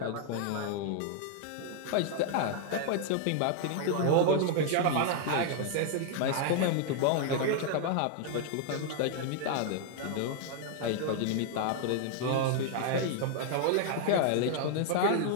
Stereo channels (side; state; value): both; different; correlation 0.00